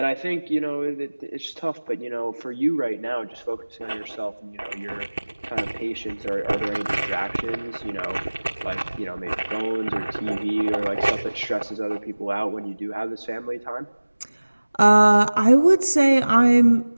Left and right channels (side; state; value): both; inverted; correlation -1.00